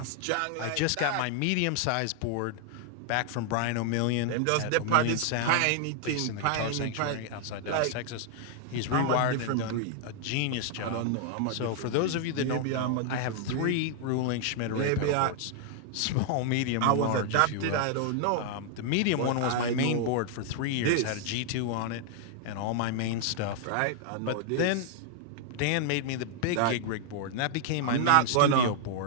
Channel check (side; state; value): both; different; correlation 0.00